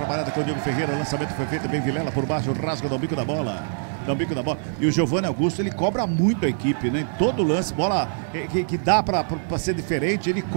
com o Diego Ferreira. Lançamento foi feito bem Vilela por baixo. Rasga no bico da bola. E o Giovanni Augusto, ele cobra muito a equipe, né? Em todo lance, bola que dá pra ser diferente. Ele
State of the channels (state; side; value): silent; left; 63 dB below the other